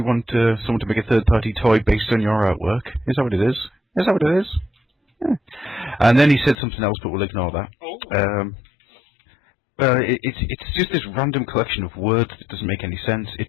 want someone to make a third-party toy based on your artwork? Is that what it is? Is that what it is? Yeah. And then he said something else, but we'll ignore that. It's just this random collection of words that doesn't make any sense.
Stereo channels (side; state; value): right; drops out; at 6.6 s